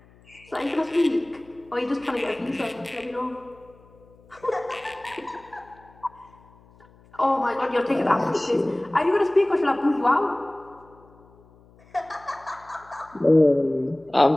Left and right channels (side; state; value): left; noise; hum, 27 dB below the sound